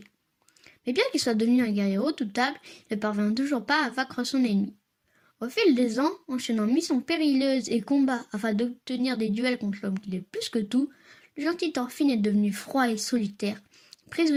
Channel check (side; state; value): both; identical; correlation 1.00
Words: Mais bien qu'il soit devenu un guerrier redoutable, il ne parvient toujours pas à vaincre son ennemi. Au fil des ans, enchaînant missions périlleuses et combats afin d'obtenir des duels contre l'homme qu'il est plus que tout, le gentil Thorfinn est devenu froid et solitaire,